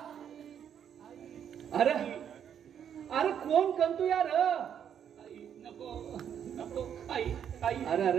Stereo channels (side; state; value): left; quieter; 8.7 dB